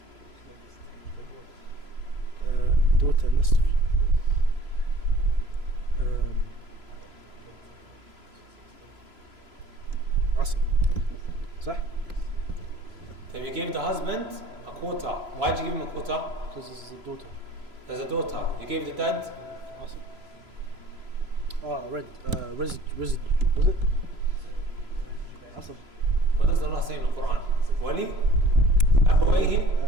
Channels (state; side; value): late; left; 3.0 ms